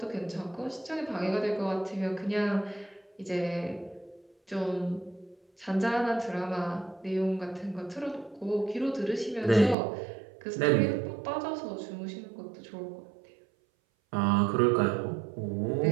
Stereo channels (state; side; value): drops out; left; at 9.8 s